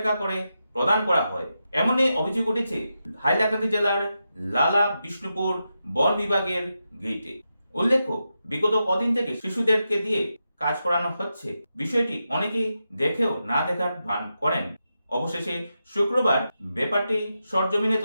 করে প্রদান করা হয়। এমনই অভিযোগ উঠেছে হাইলাকান্দি জেলার লালা বিষ্ণুপুর বন বিভাগের গেইটে। উল্লেখ্য, বিগত কদিন থেকে শিশুদেরকে দিয়ে কাজ করানো হচ্ছে। বিষয়টি অনেকেই দেখেও না দেখার ভান করেন। অবশেষে শুক্রবার ব্যাপারটি সরজমিনে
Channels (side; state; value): both; inverted; correlation -0.88